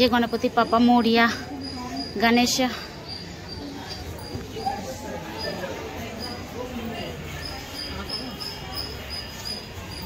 গণপতি বাপ্পা মোরিয়া, গণেশা।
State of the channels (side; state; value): both; identical; correlation 1.00